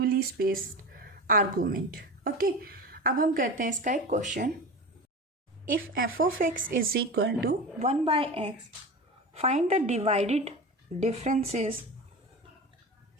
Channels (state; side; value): normal; both; correlation 0.28